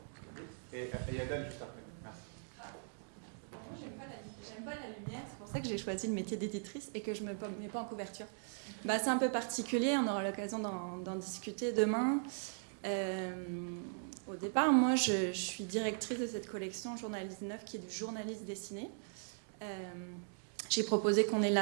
J'aime pas la lumière, c'est pour ça que j'ai choisi le métier d'éditrice et que je ne me mets pas en couverture. C'est un peu particulier, on aura l'occasion d'en discuter demain. Au départ, moi, je suis directrice de cette collection Journalisme Neuf qui est du journalisme dessiné. J'ai proposé qu'on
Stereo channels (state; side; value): silent; left; digital silence